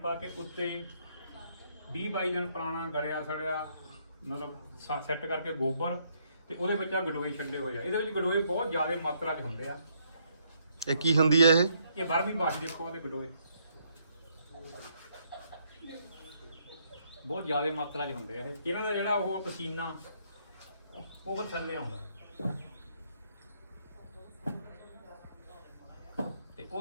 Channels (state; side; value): inverted; both; correlation -0.71